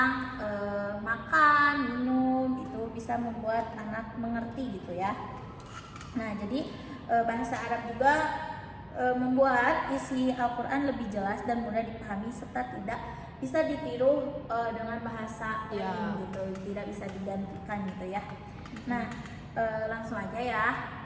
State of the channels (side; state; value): both; identical; correlation 1.00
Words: makan, minum, itu bisa membuat anak mengerti gitu ya. Nah, jadi bahasa Arab juga membuat isi Al-Quran lebih jelas dan mudah dipahami serta tidak bisa ditiru dengan bahasa lain gitu, tidak bisa digantikan gitu ya. Nah, langsung aja ya.